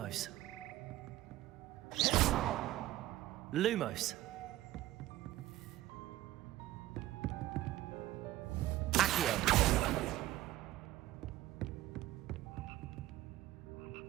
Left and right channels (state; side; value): quieter; left; 15.4 dB